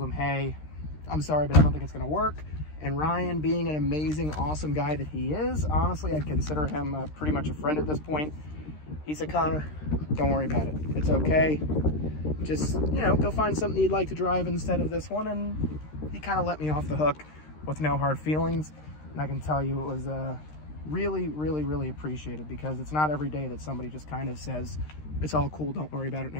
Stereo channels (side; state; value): right; late; 13 ms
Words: him, hey, I'm sorry, but I don't think it's going to work. And Ryan, being an amazing, awesome guy that he is, honestly, I'd consider him pretty much a friend at this point. He said, Connor, don't worry about it. It's okay. Just, you know, go find something you'd like to drive instead of this one. And he kind of let me off the hook with no hard feelings. And I can tell you it was really, really, really appreciated, because it's not every day that somebody just kind of says, it's all cool, don't worry about it,